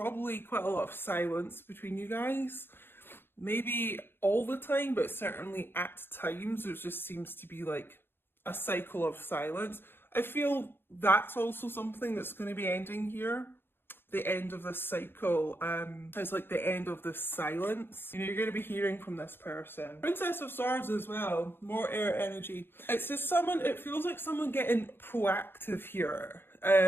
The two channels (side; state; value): right; late; 0.10 ms